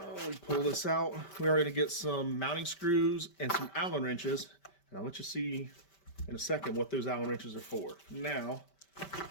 We pull this out. We are going to get some mounting screws and some Allen wrenches. And I'll let you see in a second what those Allen wrenches are for. Now,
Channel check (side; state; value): right; late; 5.1 ms